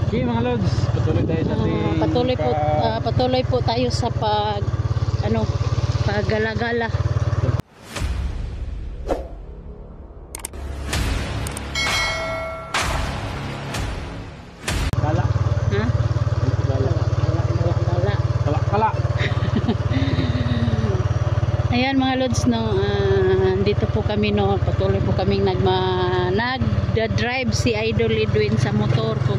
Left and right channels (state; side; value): identical; both; correlation 1.00